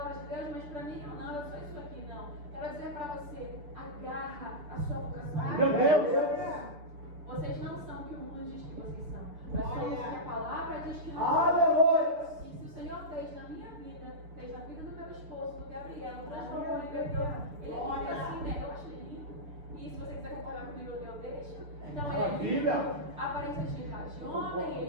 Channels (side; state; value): left; late; 6.8 ms